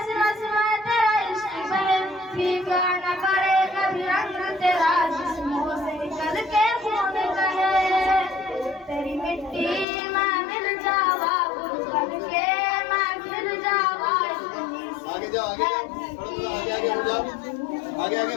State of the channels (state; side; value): drops out; right; at 9.9 s